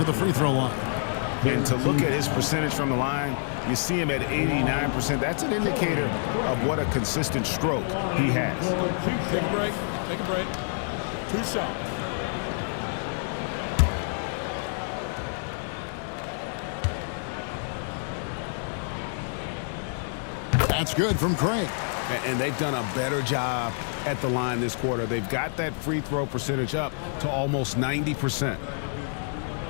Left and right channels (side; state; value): right; silent; 60 dB below the other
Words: the free throw line. And to look at his percentage from the line, you see him at 89%. That's an indicator of what a consistent stroke he has. Take a break. Take a break. 2 shots. That's good from Craig. And they've done a better job at the line this quarter. They've got that free throw percentage up to almost 90%.